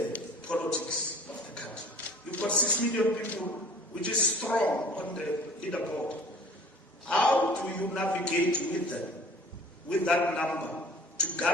politics of the country? You've got 6 million people, which is strong on the leaderboard. How do you navigate with them, with that number, to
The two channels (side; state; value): both; normal; correlation 0.49